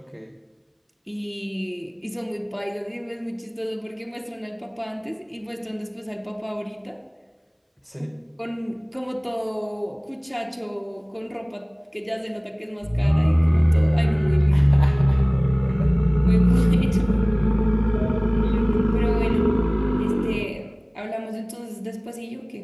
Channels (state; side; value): identical; both; correlation 1.00